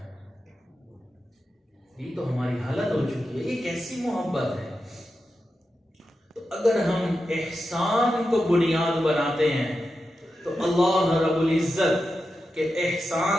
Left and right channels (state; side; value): normal; both; correlation 0.90